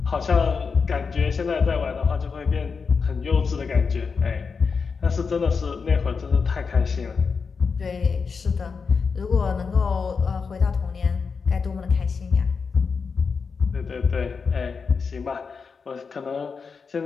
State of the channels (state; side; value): quieter; right; 5.3 dB